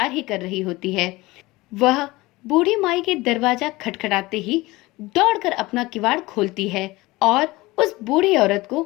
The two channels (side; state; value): right; quieter; 20.6 dB